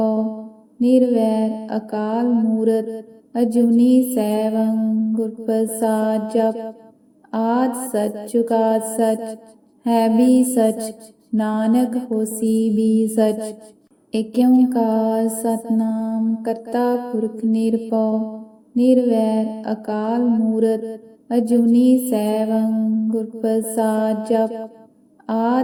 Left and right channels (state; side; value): identical; both; correlation 1.00